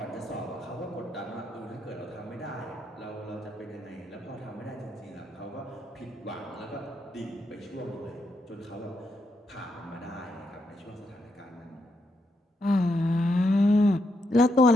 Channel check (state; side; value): normal; both; correlation 0.80